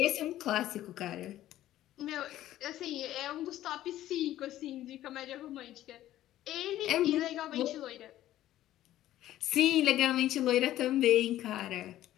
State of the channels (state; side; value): quieter; right; 13.6 dB